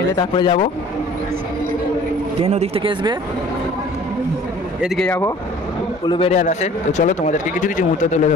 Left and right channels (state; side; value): normal; both; correlation 0.50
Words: এলে তারপরে যাব। ট্রেন ওদিক থেকে আসবে, এদিকে যাবো উলুবেড়িয়া রাসে। তো চলো তোমাদেরকে কিছু কিছু মুহূর্ত তুলে